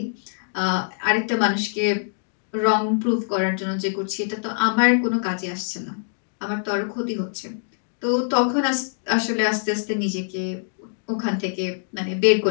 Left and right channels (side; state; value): right; silent; digital silence